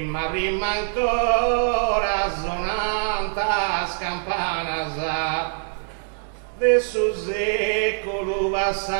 prima ancora sonanta scampana de su secolo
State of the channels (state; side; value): silent; left; digital silence